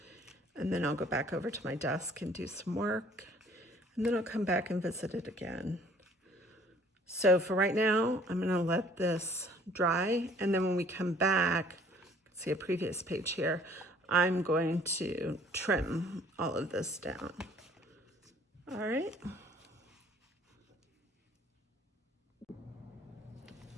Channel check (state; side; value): normal; both; correlation 0.56